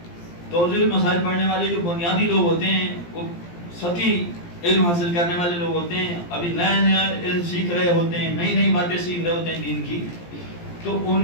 توضیح المسائل پڑھنے والے جو بنیادی لوگ ہوتے ہیں وہ سطحی علم حاصل کرنے والے لوگ ہوتے ہیں, ابھی نیا علم سیکھ رہے ہوتے ہیں, نئی باتیں سیکھ رہے ہوتے ہیں دین کی, تو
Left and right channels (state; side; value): late; right; 17 ms